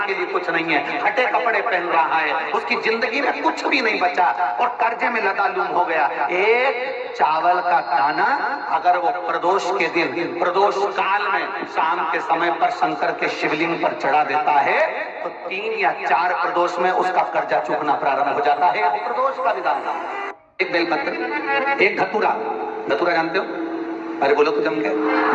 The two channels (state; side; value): identical; both; correlation 1.00